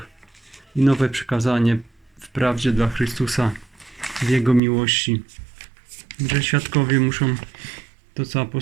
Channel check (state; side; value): drops out; left; at 4.6 s